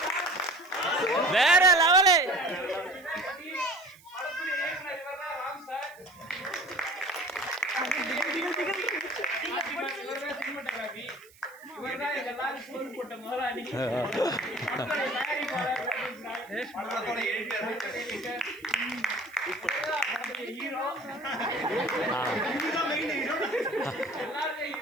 வேற லெவலு. படத்துடைய இயக்குனர் இவர்தான் ராம் சார். இவர்தான் சினிமாட்டோகிராஃபி. இவர்தான் எல்லாரும் சோறு போட்ட முதலாளி. படத்துடைய தயாரிப்பாளர், படத்தோட எடிட்டர், படத்துடைய ஹீரோ. எல்லாருமே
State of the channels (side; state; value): right; noise; hiss, 26 dB below the sound